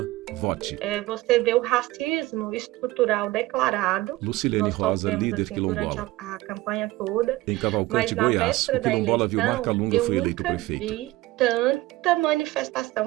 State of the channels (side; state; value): left; quieter; 18.7 dB